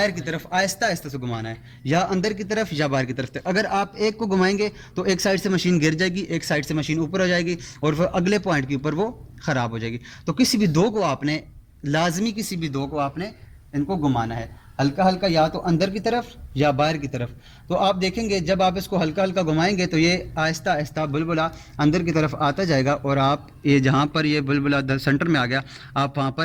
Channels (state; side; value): identical; both; correlation 1.00